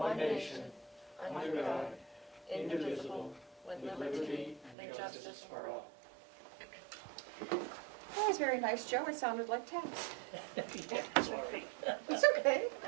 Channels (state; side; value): drops out; left; at 4.8 s